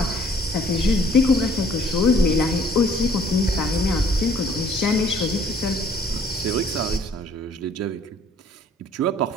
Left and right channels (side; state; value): both; normal; correlation 0.58